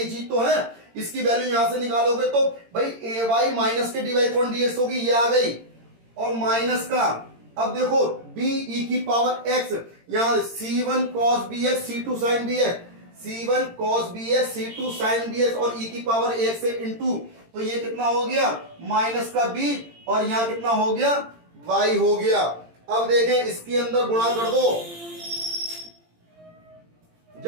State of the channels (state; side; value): late; left; 18 ms